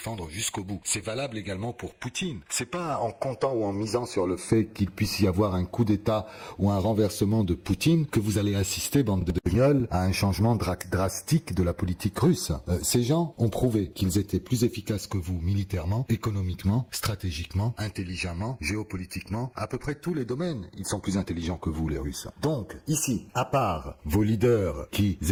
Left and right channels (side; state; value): both; identical; correlation 1.00